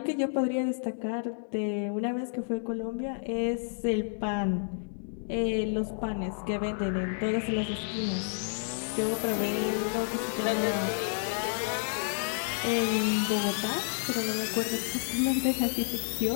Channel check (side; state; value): right; silent; digital silence